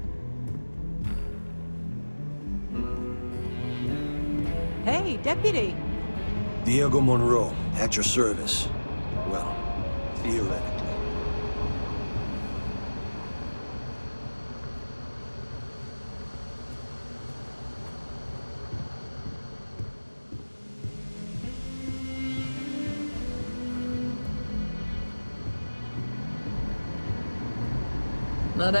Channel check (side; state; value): both; inverted; correlation -1.00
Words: Deputy. Diego Monroe, at your service. Well, theoretically. Not